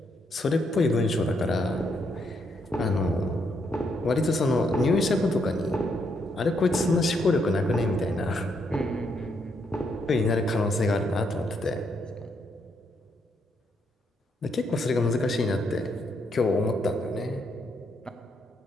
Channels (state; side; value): normal; both; correlation 0.76